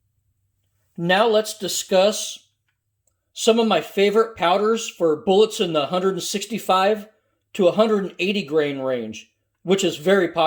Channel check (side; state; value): both; identical; correlation 1.00